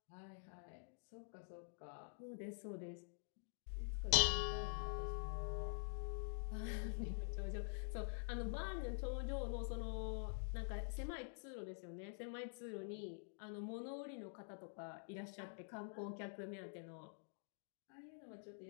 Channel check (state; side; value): silent; right; digital silence